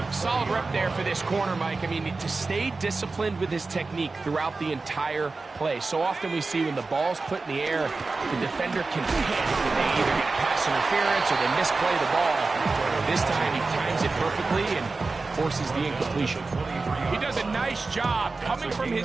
Solid rep there for this corner, Mike. I mean, to stay disciplined with his technique throughout the entire play. So often we see when the ball's put in the air, the defender can panic and they either get pass interference or they misplay the ball. This time he times it perfectly and forces the incompletion. He does a nice job coming from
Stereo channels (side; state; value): left; quieter; 3.8 dB